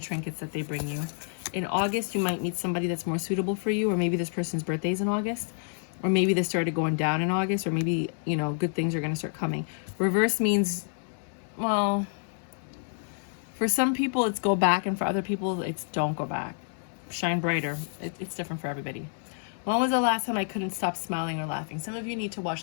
trinkets that they bring you. In August, you might meet somebody that's more suitable for you, or maybe this person's birthday is in August, or maybe they started going down in August, or maybe, you know, good things are going to start coming. Reverse means, well, for some people it's go back, and for other people it's don't go back. Shine brighter. It's different for everybody. When was the last time I couldn't stop smiling or laughing? Some of you need to watch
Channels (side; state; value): right; silent; 59 dB below the other